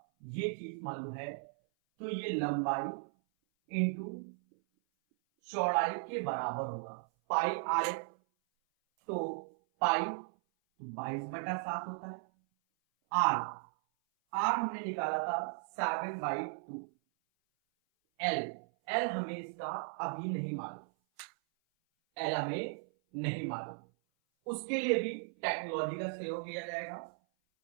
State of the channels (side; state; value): left; silent; 54 dB below the other